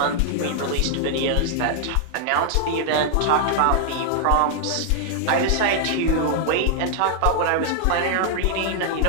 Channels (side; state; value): both; different; correlation -0.01